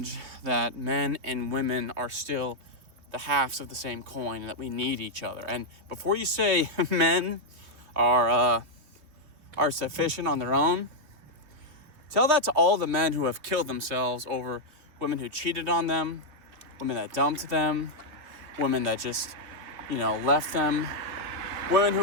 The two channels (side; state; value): left; late; 3.2 ms